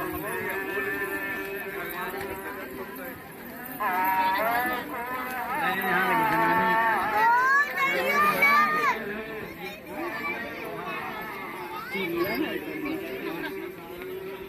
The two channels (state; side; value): identical; both; correlation 1.00